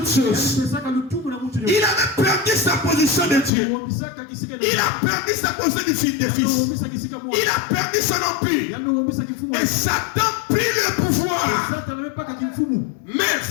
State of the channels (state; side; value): drops out; right; at 3.5 s